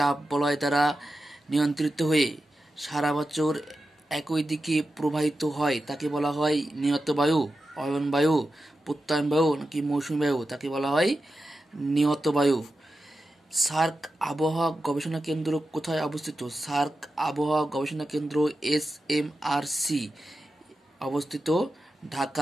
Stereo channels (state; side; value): normal; both; correlation 0.91